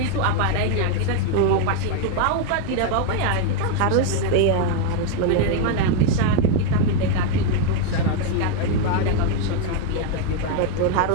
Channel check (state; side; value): different; both; correlation 0.01